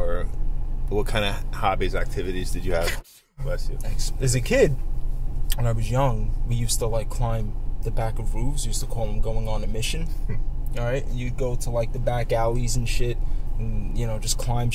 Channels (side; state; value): both; identical; correlation 1.00